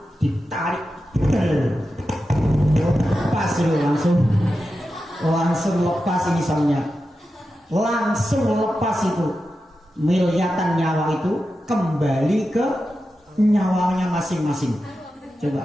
ditarik, lepas dulu langsung lepas ini soalnya, langsung lepas itu miliatan nyawa itu kembali ke nyawanya masing-masing.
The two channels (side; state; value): both; normal; correlation 0.91